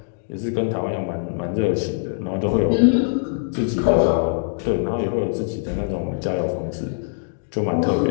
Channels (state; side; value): silent; right; digital silence